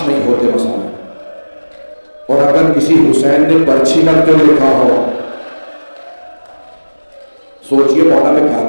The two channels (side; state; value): both; inverted; correlation -1.00